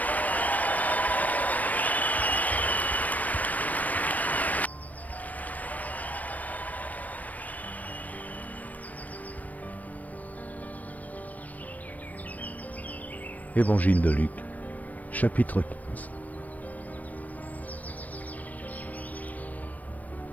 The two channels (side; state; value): right; late; 0.075 ms